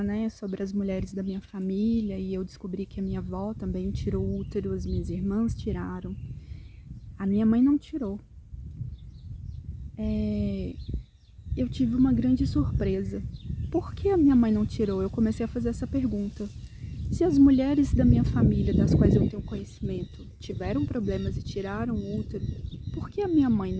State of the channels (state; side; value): identical; both; correlation 1.00